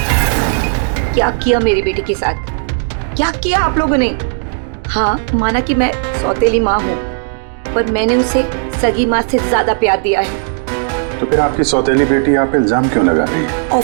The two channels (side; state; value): left; silent; digital silence